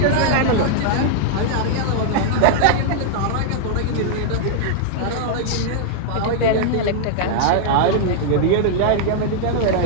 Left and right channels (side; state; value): both; different; correlation -0.01